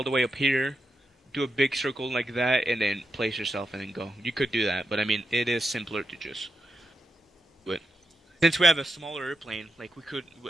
up here, do a big circle like that, and then place yourself and then go. You could do that, but I mean, it is simpler to just do it. Since we have a smaller airplane, like we could,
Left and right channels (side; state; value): both; normal; correlation 0.86